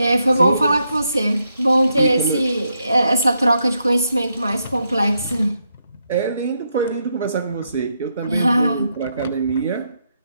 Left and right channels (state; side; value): inverted; both; correlation -0.80